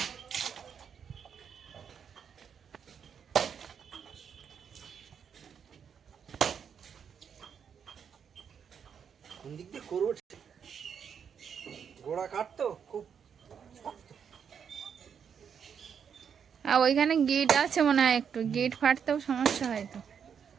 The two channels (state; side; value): quieter; left; 7.4 dB